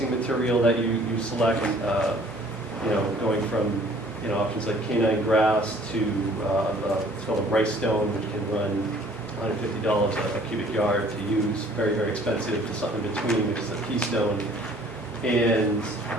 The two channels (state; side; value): normal; both; correlation 0.55